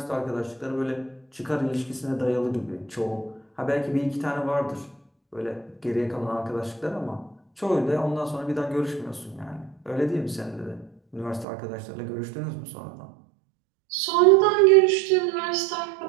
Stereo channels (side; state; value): left; drops out; at 11.5 s